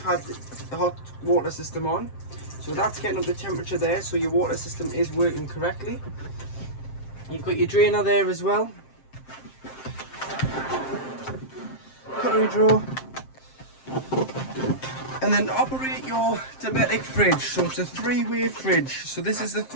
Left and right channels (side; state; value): right; late; 7.6 ms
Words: had the hot water system on. So that's getting up the temperature there, so your water system is working correctly. You've got your drainer there as well. Cutlery drawer. And then operate your Dometic fridge. So it's a 3-way fridge. So this is the